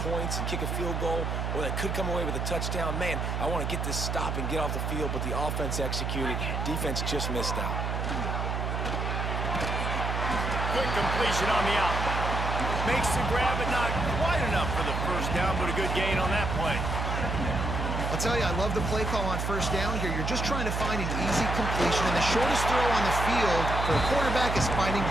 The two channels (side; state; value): right; noise; hum, 1 dB below the sound